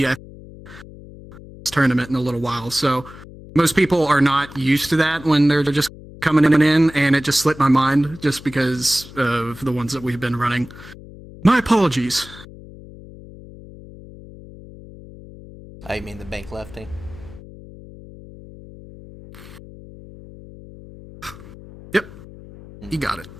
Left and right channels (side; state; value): left; noise; hum, 18 dB below the sound